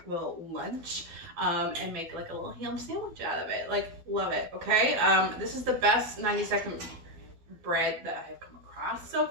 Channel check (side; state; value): left; late; 12 ms